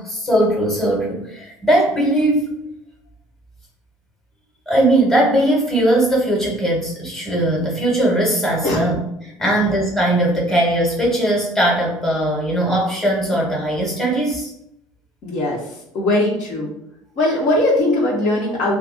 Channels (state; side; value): normal; both; correlation 0.55